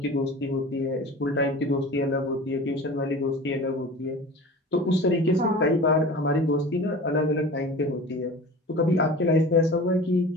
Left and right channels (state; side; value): normal; both; correlation 0.37